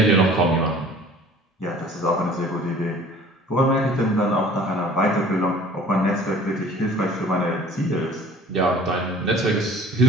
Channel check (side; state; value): both; normal; correlation 0.50